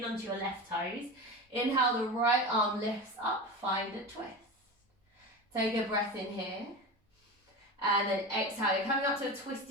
onto your left toes. Inhale, the right arm lifts up. Find a twist. Take a breath in here. And then exhale. You're coming up to a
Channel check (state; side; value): normal; both; correlation 0.27